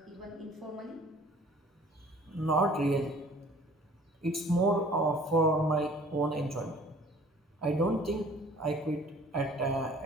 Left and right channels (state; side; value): normal; both; correlation 0.52